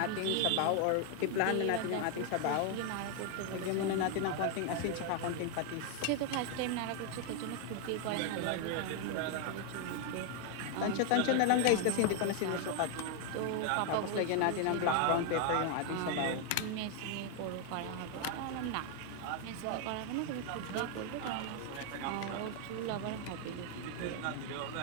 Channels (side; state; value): both; different; correlation 0.01